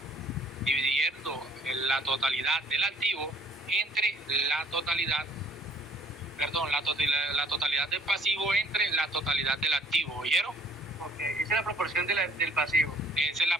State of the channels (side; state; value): both; normal; correlation 0.56